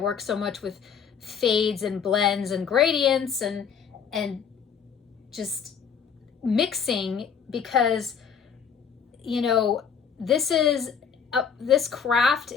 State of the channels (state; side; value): quieter; right; 7.0 dB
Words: so much with fades and blends and gradients and just mixing, because, you know, this craft